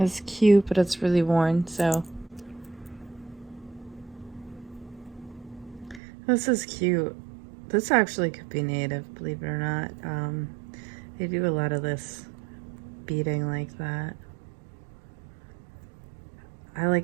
cute, but it's really worn, so. This is cute. This actually could be native, believe it or not. They do a lot of this beading like that. I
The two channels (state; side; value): drops out; left; at 6.0 s